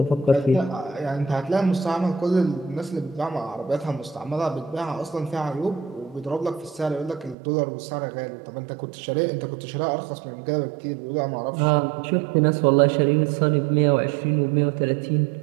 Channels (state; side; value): drops out; left; at 7.4 s